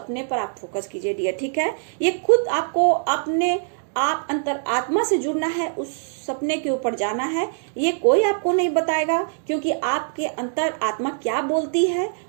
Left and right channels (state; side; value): silent; left; digital silence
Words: पर आप फोकस कीजिए डियर, ठीक है। ये खुद आपको अपने आप अंतर आत्मा से जुड़ना है, उस सपने के ऊपर जाना है, ये कोई आपको नहीं बताएगा, क्योंकि आपके अंतर आत्मा क्या बोलती है